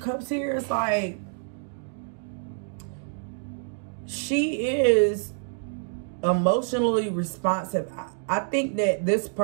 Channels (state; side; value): silent; left; 60 dB below the other